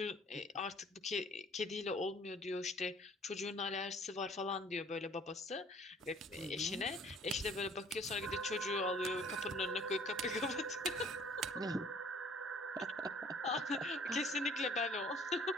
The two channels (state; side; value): normal; both; correlation 0.55